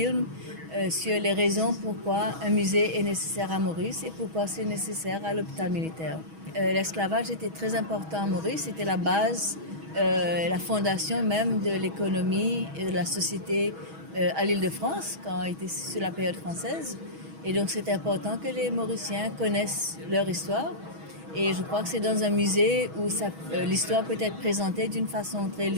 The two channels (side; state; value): left; late; 6.2 ms